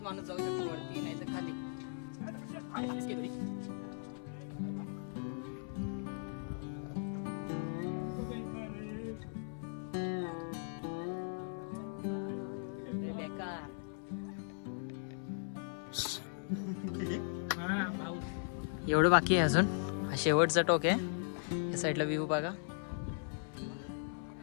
माणूस जाऊ शकतो वरती, नाही तर खाली। एवढं बाकी आहे अजून, हा शेवटचा टोक आहे। या साईडला व्ह्यू बघा।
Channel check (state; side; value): silent; right; 52 dB below the other